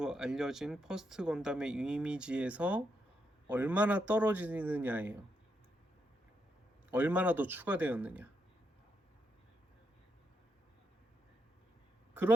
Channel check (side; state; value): both; normal; correlation 0.80